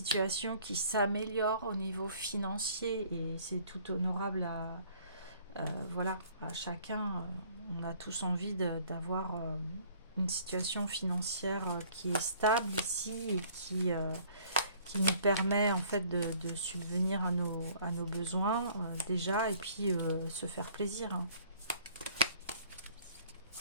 qui s'améliore au niveau financier, et c'est tout honorable voilà, à chacun. On a tous envie d'avoir une situation financière qui est stable ici et qui nous permet en fait de subvenir à nos besoins déjà, et puis se faire plaisir, hein.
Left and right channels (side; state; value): both; inverted; correlation -0.57